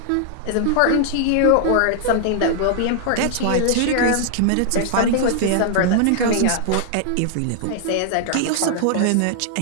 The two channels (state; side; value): different; both; correlation -0.01